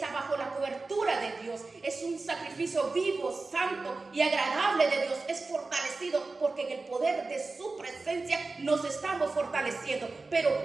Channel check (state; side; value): quieter; left; 3.7 dB